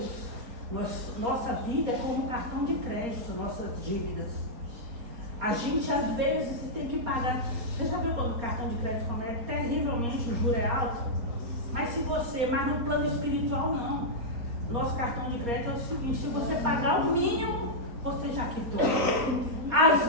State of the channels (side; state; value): left; late; 4.2 ms